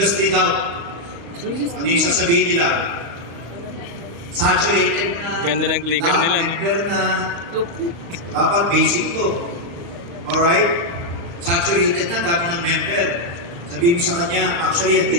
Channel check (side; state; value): left; late; 35 ms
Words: doubt. Ano yung sasabihin nila? Saturated na. Ganda ng clicker nila, no? Member na. Dapat basic to. Alright? Saturated na, dami ng member. Sabihin mo sa kanya, actually, yan din